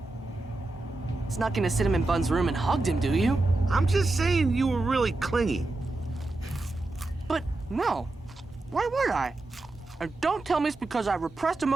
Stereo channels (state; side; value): quieter; left; 3.0 dB